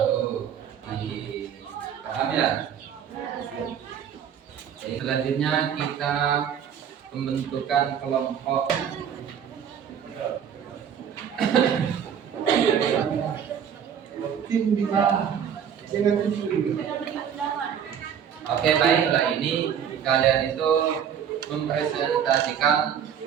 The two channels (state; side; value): quieter; left; 8.4 dB